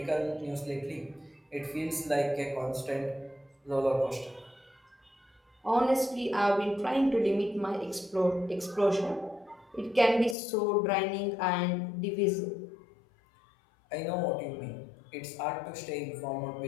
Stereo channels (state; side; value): drops out; right; at 10.4 s